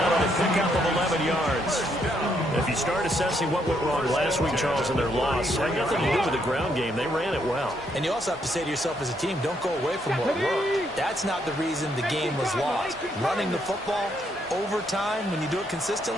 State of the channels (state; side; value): normal; both; correlation 0.74